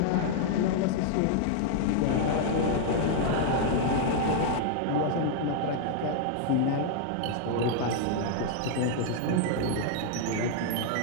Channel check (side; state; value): both; different; correlation 0.00